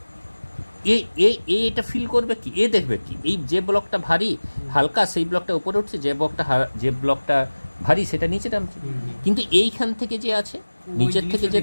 এটা ফিল করবে কি, এ দেখবে কি এই যে ব্লকটা ভারী হালকা সেই ব্লকটা উপরে উঠছে, যে ব্লকটা ভারী সেটা নিচে নামছে। কিন্তু এইখান থেকে যে আছে নিচের থেকে যে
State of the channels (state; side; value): inverted; both; correlation -1.00